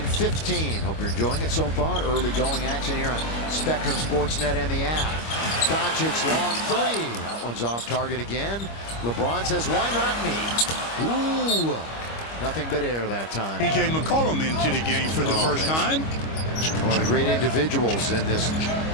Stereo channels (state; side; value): late; right; 25 ms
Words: Hope you're enjoying it so far. Early going action here on Spectrum Sportsnet and the app. Doncic long three. That one's off target again. LeBron says, why not me? Ooh, nothing but air that time. P.J. McCollum into the game for the first time. One of the great individuals in this